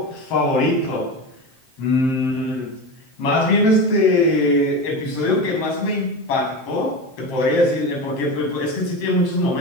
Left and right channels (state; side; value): late; right; 7.5 ms